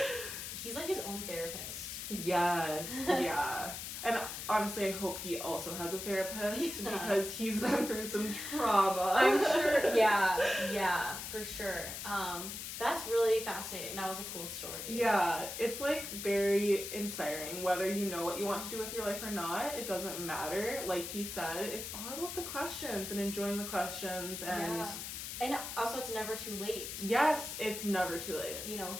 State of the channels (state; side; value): noise; left; hiss, 7 dB below the sound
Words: he's like his own therapist. Yes, yeah. And honestly, I hope he also has a therapist because he's been through some trauma. I'm sure, yeah, for sure. That's really fascinating. That was a cool story. Yeah, it's like very inspiring. Whether you know what you want to do with your life or not, it doesn't matter. Like he said, it's all about the questions and enjoying the questions. And yeah. And also, it's never too late. Yes, it's never too late. You know,